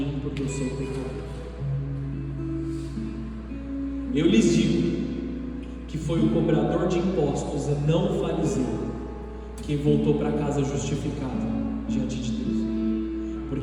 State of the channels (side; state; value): both; identical; correlation 1.00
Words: porque eu sou pecador. Eu lhes digo que foi o cobrador de impostos e não o fariseu quem voltou para casa justificado diante de Deus,